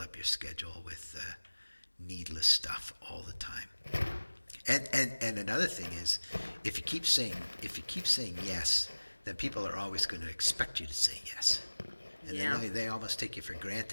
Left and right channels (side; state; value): both; inverted; correlation -1.00